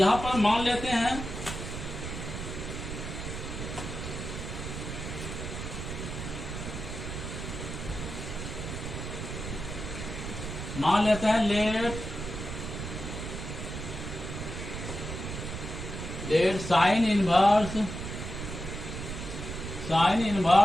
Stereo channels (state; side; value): noise; right; rumble, 7 dB below the sound